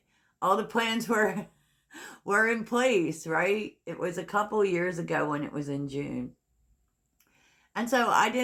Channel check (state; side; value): identical; both; correlation 1.00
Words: All the plans were in place, right? It was a couple years ago when it was in June. And so